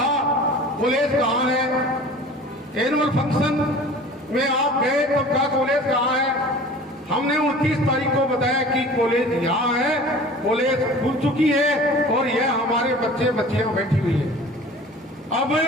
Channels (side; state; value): both; normal; correlation 0.43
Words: कॉलेज कहाँ है। एनुअल फंक्शन में आप गए तो क्या कॉलेज कहाँ है। हमने 29 तारीख को बताया कि कॉलेज यहाँ है, कॉलेज खुल चुकी है और यह हमारे बच्चियां बैठी हुई है। अब